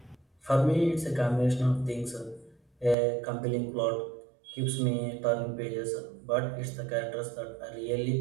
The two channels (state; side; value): drops out; left; at 3.0 s